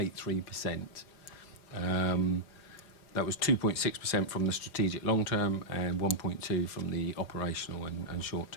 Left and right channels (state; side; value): late; right; 4.9 ms